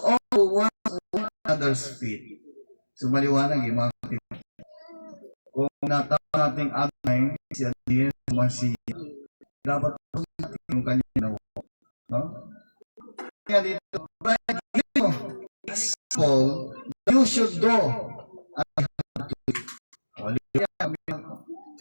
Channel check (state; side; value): inverted; both; correlation -1.00